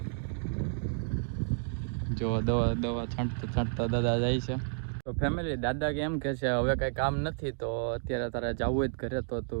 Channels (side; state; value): left; silent; digital silence